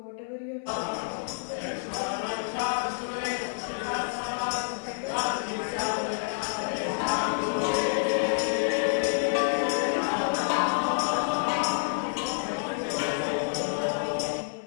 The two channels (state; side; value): silent; right; 59 dB below the other